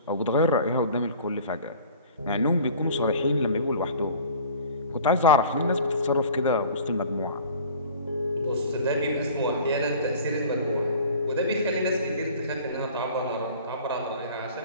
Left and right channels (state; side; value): inverted; both; correlation -0.45